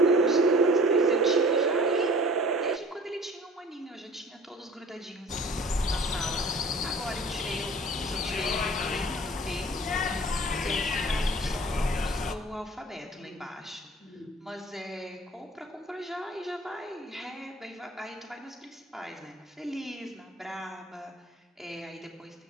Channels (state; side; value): normal; both; correlation 0.47